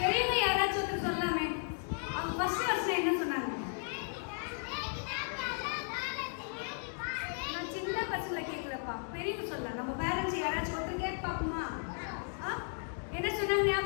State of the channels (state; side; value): silent; right; 54 dB below the other